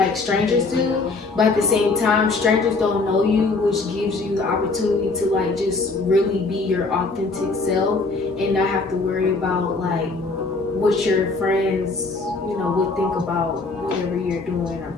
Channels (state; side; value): quieter; right; 3.7 dB